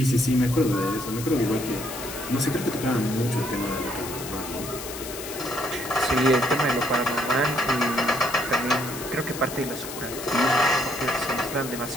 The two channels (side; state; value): left; noise; hiss, 10 dB below the sound